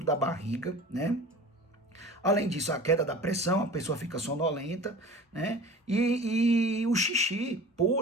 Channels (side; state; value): both; normal; correlation 0.40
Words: da barriga, né? Além disso, a queda da pressão, a pessoa fica sonolenta, né? E o xixi,